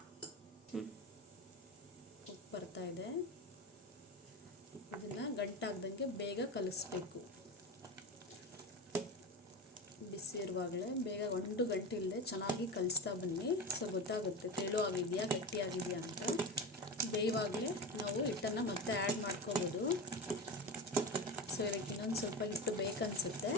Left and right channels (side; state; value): both; normal; correlation 0.24